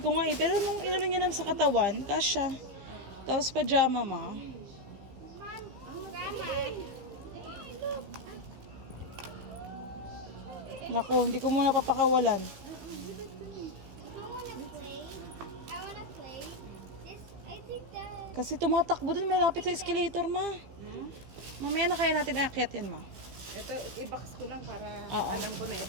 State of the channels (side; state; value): left; late; 15 ms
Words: nga pero nung inano niya lang sa katawan, kasha. Tapos pajama ma. Mom, Grandma. Naku, hindi ko muna papakawalan. I wanna play. This, I think that... Kasi tumatakbo dun, may lapit sa escalator ma. Mamaya na kaya natin aakyat yan ma. Ito, i-box ko lang para Oo. alam ko na